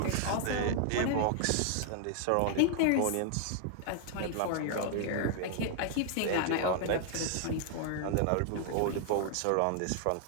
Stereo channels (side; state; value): both; different; correlation 0.00